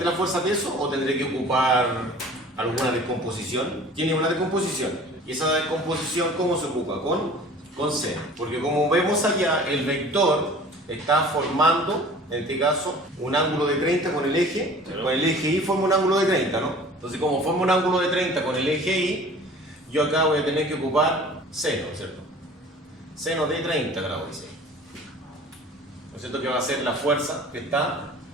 la fuerza peso, o tendré que ocupar alguna descomposición? Tiene una descomposición. ¿Y esa descomposición cómo se ocupa? Con C. Porque como vemos allá, el vector está formando En este caso, un ángulo de 30 con el eje. Con el eje Y forma un ángulo de 30, ¿no? Entonces, como forma un ángulo de 30 con el eje Y, yo acá voy a tener que ocupar seno, ¿cierto? Seno de 30 grados, dice. ¿No es cierto? Que va a ser la fuerza que está,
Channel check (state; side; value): normal; both; correlation 0.45